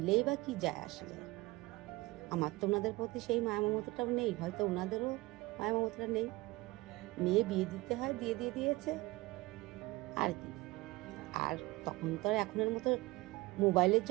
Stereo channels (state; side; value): quieter; left; 21.6 dB